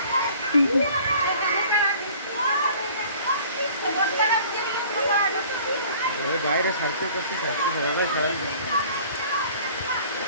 বাইরে ছাড়তে করতে ছাড়তে সবাই সবাই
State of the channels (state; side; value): inverted; both; correlation -0.50